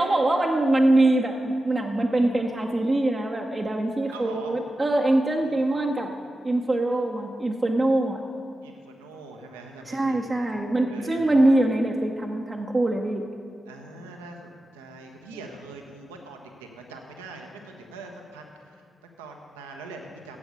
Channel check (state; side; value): normal; both; correlation 0.93